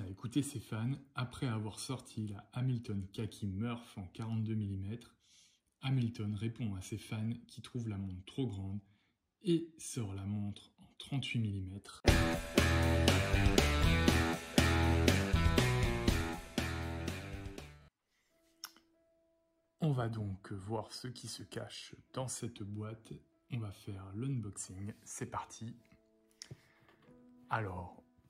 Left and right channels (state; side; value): identical; both; correlation 1.00